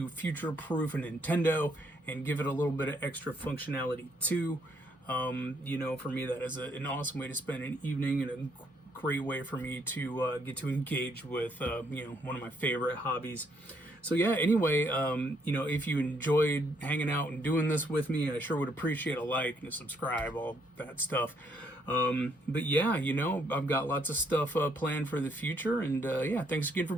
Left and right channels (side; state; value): both; normal; correlation 0.71